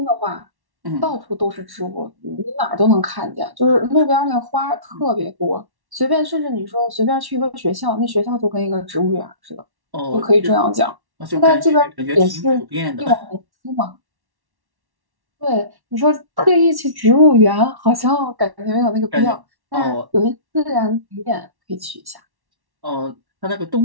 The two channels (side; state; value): left; late; 1.1 ms